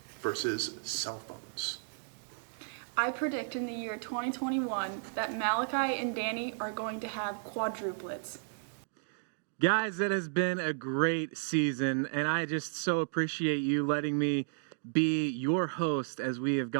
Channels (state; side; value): silent; left; digital silence